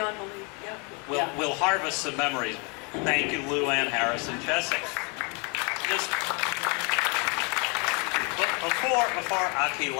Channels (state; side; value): quieter; right; 32.8 dB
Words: belief, yeah. We'll harvest some memories. Thank you, Lou Ann Harrison Chessick. Just before Akke